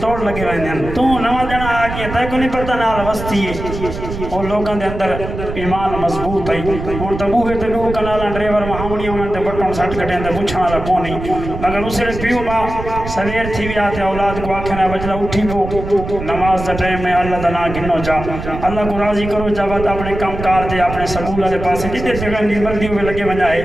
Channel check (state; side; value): noise; right; rumble, 8 dB below the sound